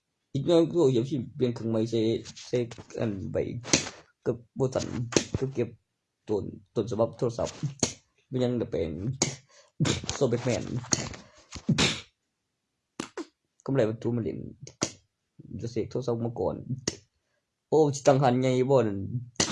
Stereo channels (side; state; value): both; identical; correlation 1.00